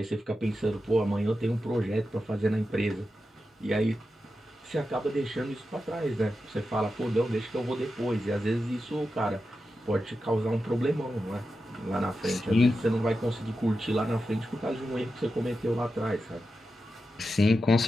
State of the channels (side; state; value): both; normal; correlation 0.90